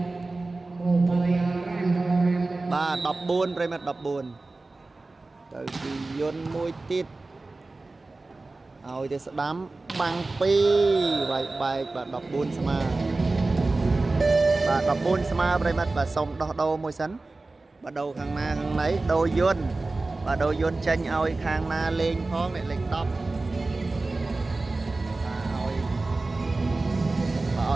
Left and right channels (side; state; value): left; quieter; 3.3 dB